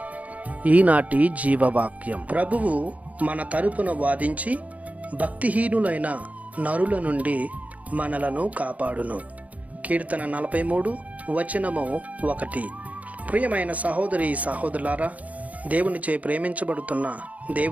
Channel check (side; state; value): left; late; 0.070 ms